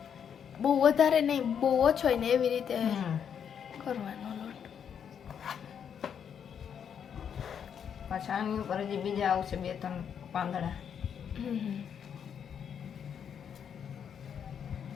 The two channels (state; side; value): quieter; right; 7.9 dB